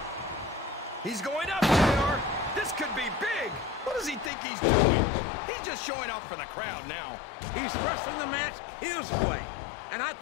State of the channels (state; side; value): drops out; right; at 4.3 s